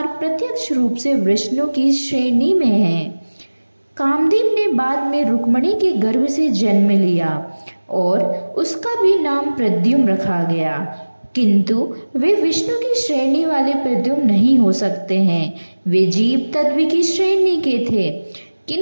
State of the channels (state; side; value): inverted; both; correlation -1.00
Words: प्रत्यक्ष रूप से विष्णु की श्रेणी में हैं। कामदेव ने बाद में रुक्मिणी के गर्भ से जन्म लिया और उसका भी नाम प्रद्युम्न रखा गया, किंतु वे विष्णु की श्रेणी वाले प्रद्युम्न नहीं हो सकते हैं। वे जीव तत्व की श्रेणी के थे,